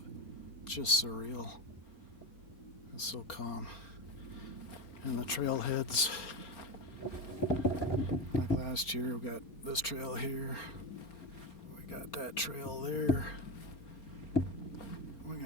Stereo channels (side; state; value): right; late; 4.3 ms